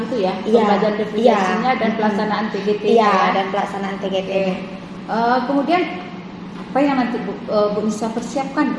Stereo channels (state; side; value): identical; both; correlation 1.00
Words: itu ya, pembelajaran diferensiasinya dan pelaksanaan TGT dan pelaksanaan TGT. Kemudian apa yang nanti Bu Nisa persiapkan